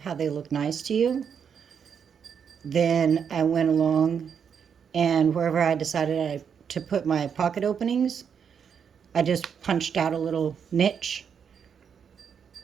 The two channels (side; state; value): left; quieter; 7.2 dB